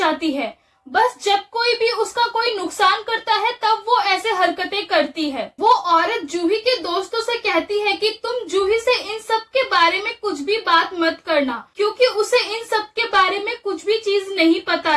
है। बस जब कोई भी उसका कोई नुकसान करता है तब वो ऐसे हरकतें करती है। वो औरत जूही के दोस्तों से कहती है कि तुम जूही से इन सब के बारे में कुछ भी बात मत करना, क्योंकि उसे इन सब के बारे में कुछ भी चीज नहीं पता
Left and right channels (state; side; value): identical; both; correlation 1.00